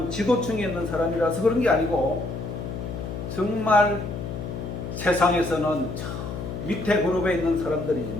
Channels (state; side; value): noise; left; hum, 7 dB below the sound